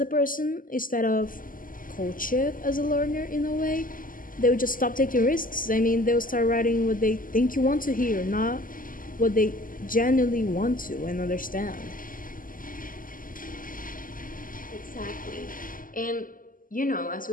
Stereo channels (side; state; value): right; late; 0.40 ms